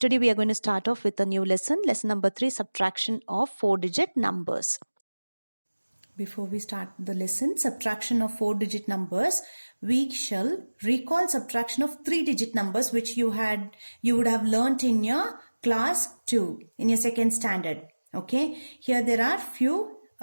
we are going to start off with a new lesson number 3, subtraction of 4-digit numbers. Before we start the lesson, subtraction of 4-digit numbers, we shall recall subtraction of 3-digit numbers which you would have learnt in your class 2, in your second standard. Okay, here there are few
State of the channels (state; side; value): inverted; both; correlation -1.00